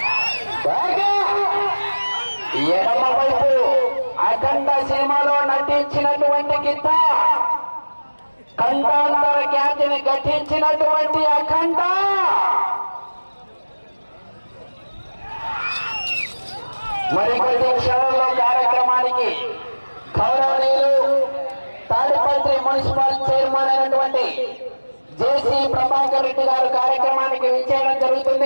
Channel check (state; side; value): inverted; both; correlation -1.00